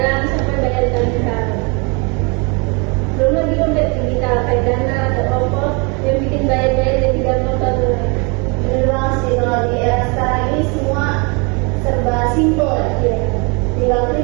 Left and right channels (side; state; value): left; quieter; 31.7 dB